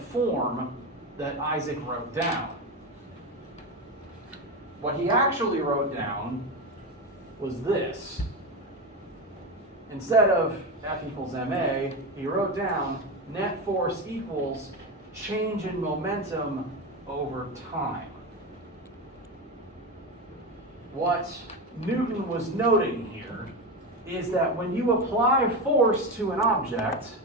form that Isaac wrote down. What he actually wrote down was this. Instead of F equals ma, he wrote down net force equals change in momentum over time. What Newton was noting here is that when you apply force to an object,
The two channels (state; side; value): normal; both; correlation 0.18